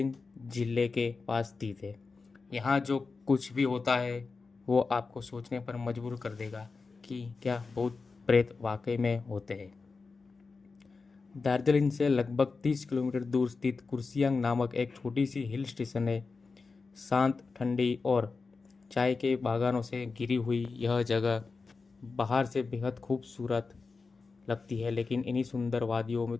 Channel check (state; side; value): quieter; right; 4.4 dB